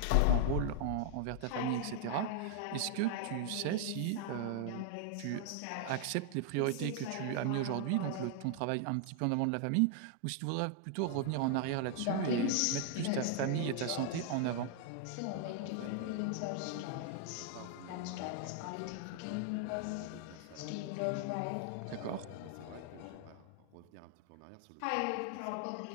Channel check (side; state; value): both; different; correlation 0.00